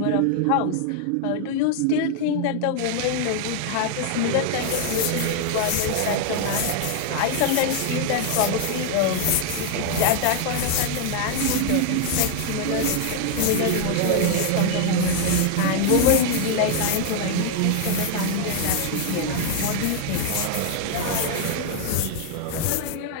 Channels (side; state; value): both; different; correlation 0.00